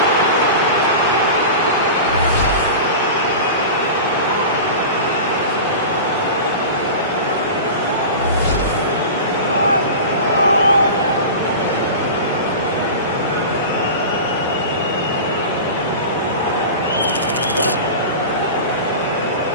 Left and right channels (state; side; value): inverted; both; correlation -0.31